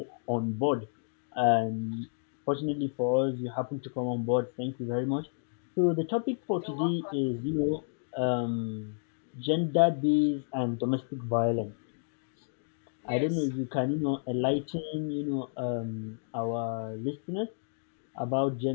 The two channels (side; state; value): right; silent; digital silence